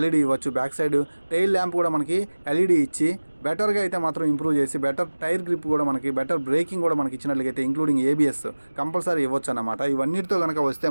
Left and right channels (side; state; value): both; inverted; correlation -1.00